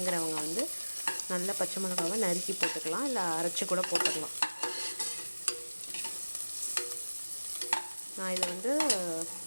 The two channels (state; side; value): inverted; both; correlation -1.00